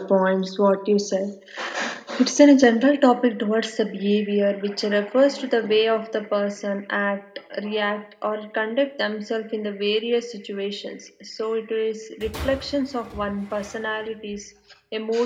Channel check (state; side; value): identical; both; correlation 1.00